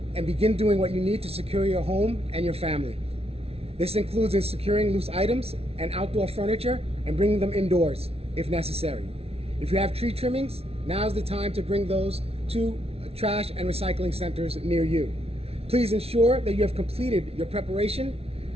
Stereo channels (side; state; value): left; late; 0.30 ms